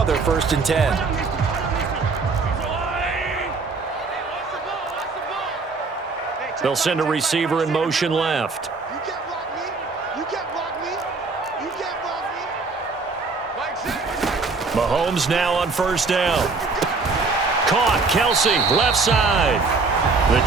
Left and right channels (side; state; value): left; quieter; 4.2 dB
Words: 1st and 10. They'll send a receiver in motion left. Mahomes now on first down. Caught. Kelsey, left side. The